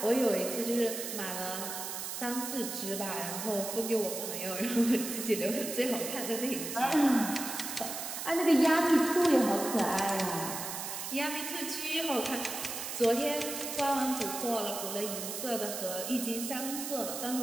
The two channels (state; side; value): noise; right; hiss, 6 dB below the sound